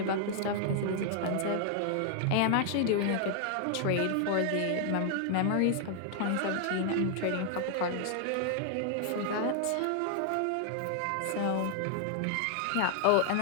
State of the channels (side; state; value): both; different; correlation 0.00